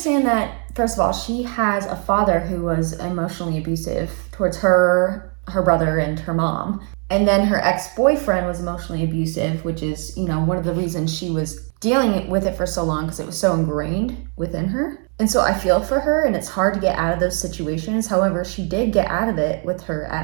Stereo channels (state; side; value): quieter; left; 39.8 dB